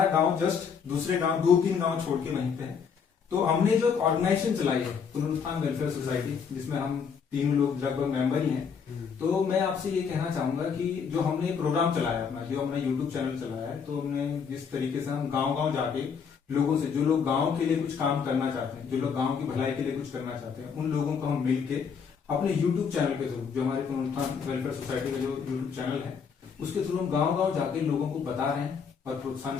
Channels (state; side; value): quieter; right; 6.4 dB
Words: गांव जस्ट दूसरे गांव 2-3 गांव छोड़ के वहीं पे है। तो हमने जो ऑर्गेनाइजेशन चलाई है पुनरुत्थान वेलफेयर सोसाइटी, जिसमें हम 3 लोग लगभग मेंबर ही हैं। तो मैं आपसे ये कहना चाहूंगा कि जो हमने प्रोग्राम चलाया अपना, जो हमने यूट्यूब चैनल चलाया है, तो हमने जिस तरीके से हम गाँव गाँव जाके लोगों से, जो लोग गांव के लिए कुछ काम करना चाहते हैं, जो लोग गांव की भलाई के लिए कुछ करना चाहते हैं, उन लोगों को हम मिलके अपने यूट्यूब चैनल के थ्रू, जो हमारे पुनरुत्थान वेलफेयर सोसाइटी का जो यूट्यूब चैनल है, उसके थ्रू हम गांव गांव जाके लोगों को बता रहे हैं और प्रोत्साहन